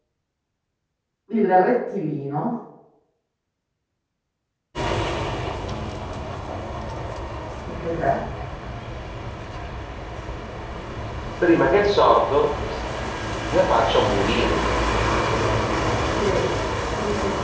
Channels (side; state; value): both; identical; correlation 1.00